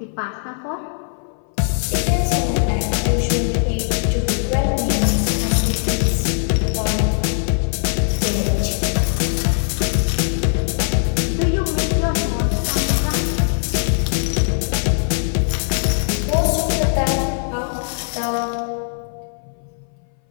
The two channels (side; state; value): right; silent; 60 dB below the other